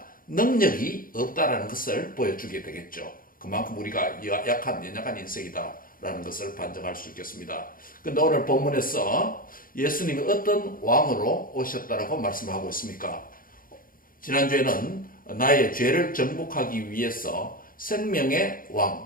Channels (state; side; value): late; right; 0.41 ms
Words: 능력이 없다라는 것을 보여주게 되겠죠. 그만큼 우리가 연약한 인생이다라는 것을 반증할 수 있겠습니다. 그런데 오늘 본문에서 예수님이 어떤 왕으로 오셨다라고 말씀하고 있습니까? 지난주에는 나의 죄를 정복하기 위해서 생명의